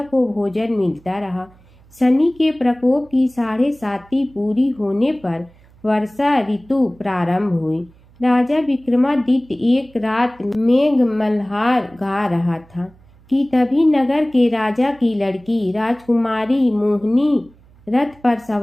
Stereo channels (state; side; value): noise; right; hum, 28 dB below the sound